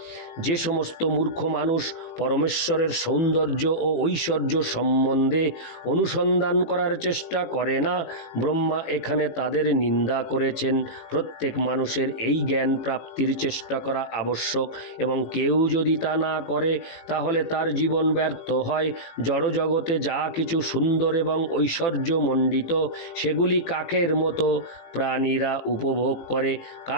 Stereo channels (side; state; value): right; late; 18 ms